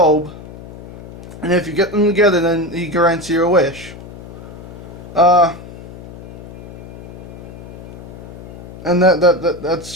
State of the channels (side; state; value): left; noise; hum, 14 dB below the sound